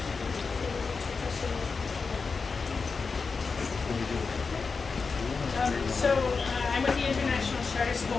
I'm with the International Charter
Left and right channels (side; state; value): right; quieter; 4.8 dB